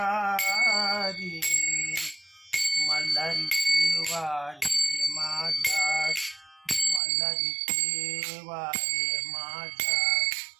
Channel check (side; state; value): left; drops out; at 7.0 s